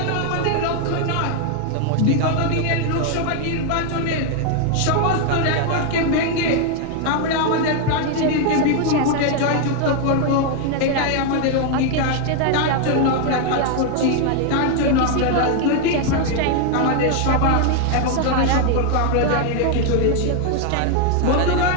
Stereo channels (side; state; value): both; different; correlation 0.00